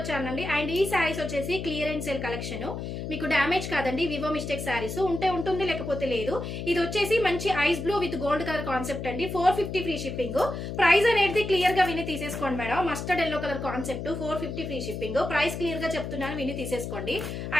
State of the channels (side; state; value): left; noise; hum, 6 dB below the sound